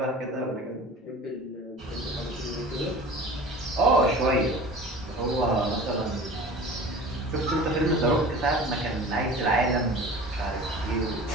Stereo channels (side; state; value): both; normal; correlation 0.40